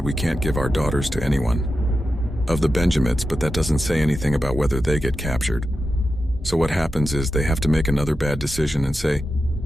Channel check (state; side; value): normal; both; correlation 0.90